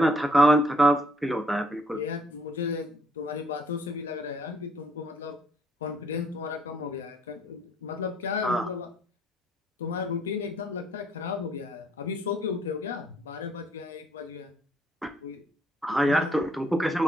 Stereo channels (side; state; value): both; normal; correlation 0.66